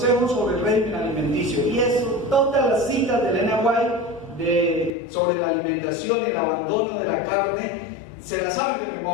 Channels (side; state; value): right; drops out; at 4.9 s